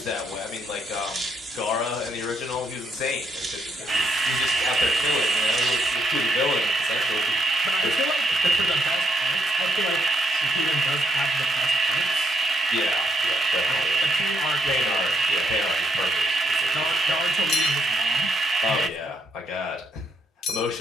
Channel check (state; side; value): normal; both; correlation 0.75